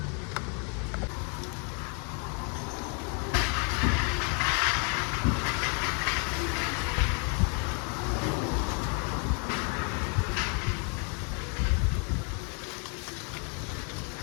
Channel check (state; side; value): quieter; right; 38.5 dB